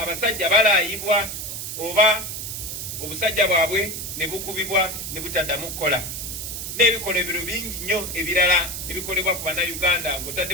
balaayibwa oba obusajja bwabwe ne bukubibwa ne butaddamu kukola. N'ebikolebero bingi nnyo ebirala ebikolebwa ku bannayuganda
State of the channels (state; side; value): noise; right; hiss, 6 dB below the sound